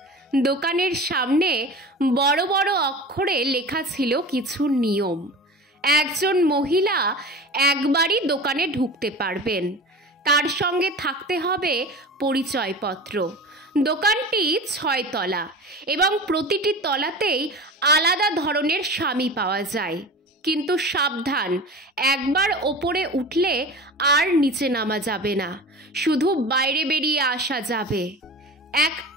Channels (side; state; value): both; normal; correlation 0.34